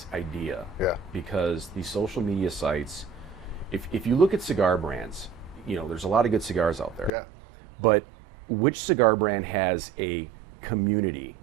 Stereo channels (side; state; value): left; drops out; at 7.1 s